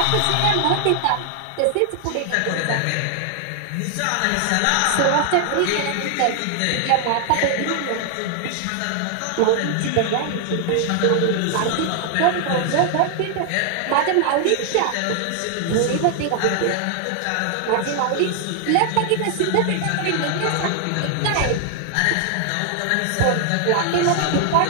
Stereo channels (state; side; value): different; both; correlation 0.00